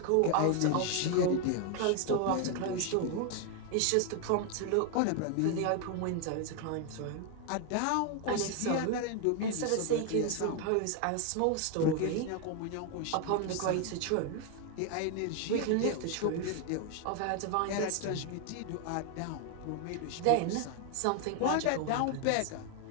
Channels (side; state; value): both; different; correlation 0.01